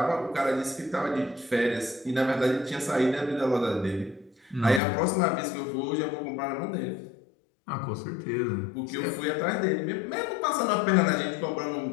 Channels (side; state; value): right; drops out; at 4.8 s